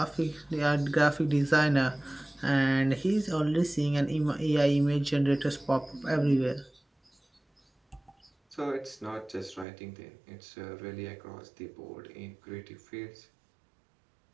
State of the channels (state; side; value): drops out; left; at 9.7 s